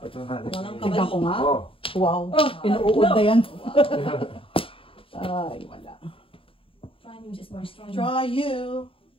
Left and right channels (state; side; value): late; right; 0.26 ms